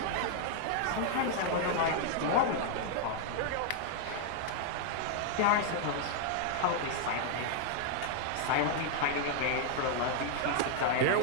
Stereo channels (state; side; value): different; both; correlation 0.00